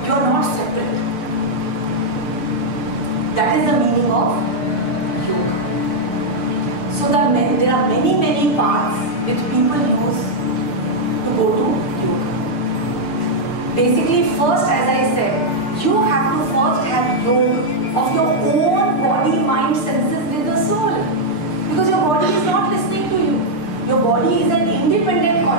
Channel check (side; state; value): right; late; 6.6 ms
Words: You are not separate. That is the meaning of yoga. So there are many paths which people use to go to yoga. Basically, first, as I said, you have to first have yoga of your own body, mind, senses with the soul. Because your body is not listening to you. Your body is an independent